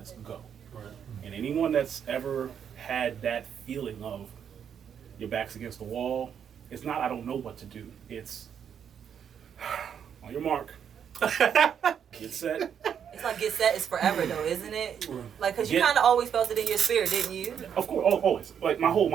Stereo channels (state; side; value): quieter; left; 8.2 dB